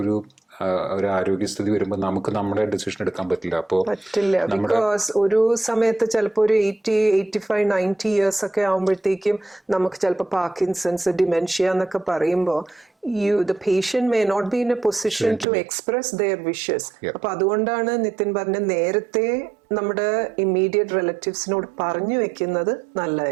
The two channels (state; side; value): drops out; left; at 15.5 s